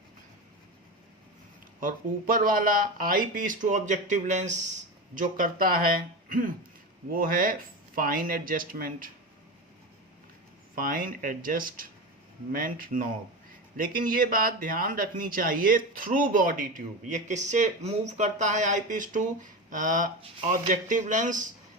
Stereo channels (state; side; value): normal; both; correlation 0.22